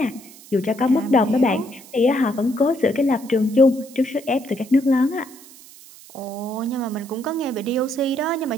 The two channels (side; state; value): right; noise; hiss, 21 dB below the sound